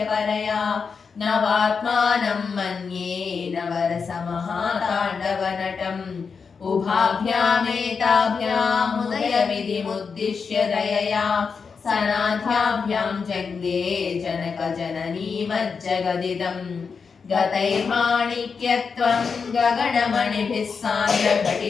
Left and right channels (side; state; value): right; quieter; 5.5 dB